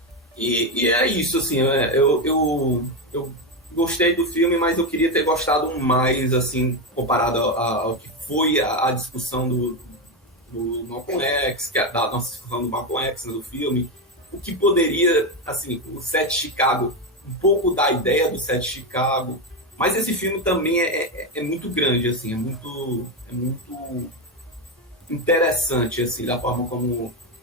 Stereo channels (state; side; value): normal; both; correlation 0.10